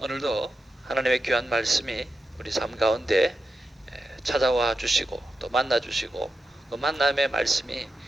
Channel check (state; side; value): normal; both; correlation 0.89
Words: 하나님의 귀한 말씀이 우리 삶 가운데 찾아와 주시고 또 만나 주시고 그 만남의 말씀이